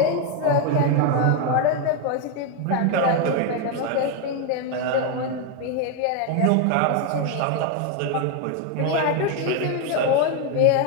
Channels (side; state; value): both; different; correlation 0.01